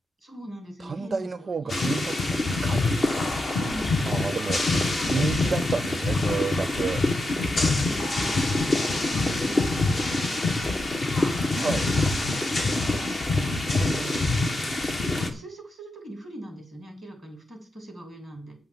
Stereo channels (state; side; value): normal; both; correlation 0.86